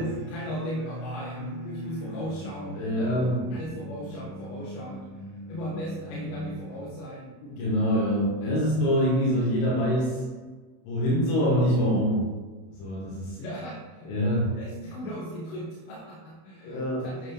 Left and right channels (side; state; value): right; late; 31 ms